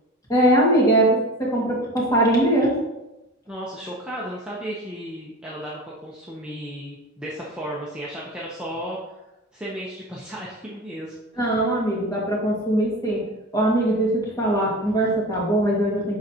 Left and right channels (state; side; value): normal; both; correlation 0.33